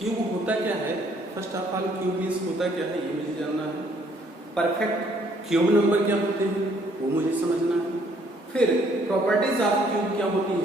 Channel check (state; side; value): normal; both; correlation 0.65